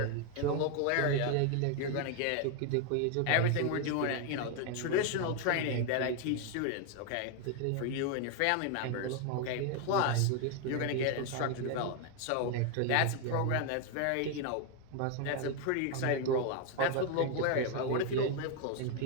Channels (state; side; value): different; both; correlation 0.01